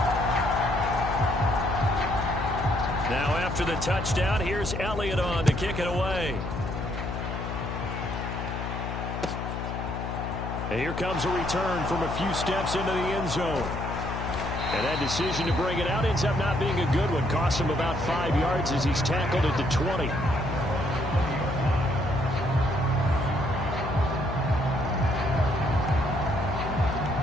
Now after the touchdown, here's Elliott on to kick it away. And here comes a return from a few steps into the end zone. And that decision to bring it out ends up not being a good one. Costs him about 5 yards as he's tackled at the 20.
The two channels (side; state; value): left; noise; hum, 5 dB below the sound